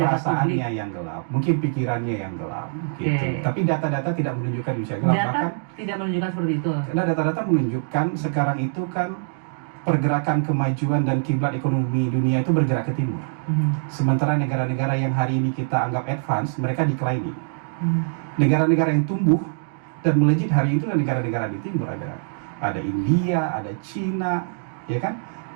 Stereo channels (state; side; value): silent; left; digital silence